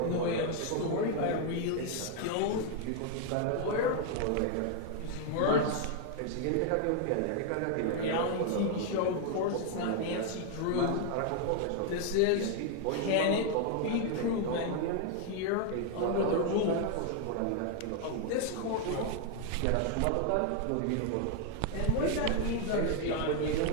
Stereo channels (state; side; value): different; both; correlation 0.00